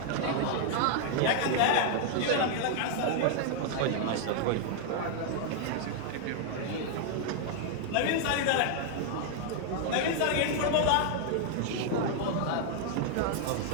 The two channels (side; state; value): both; different; correlation 0.00